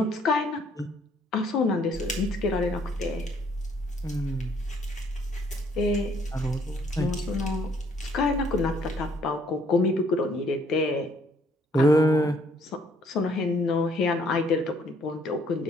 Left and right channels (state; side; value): normal; both; correlation 0.65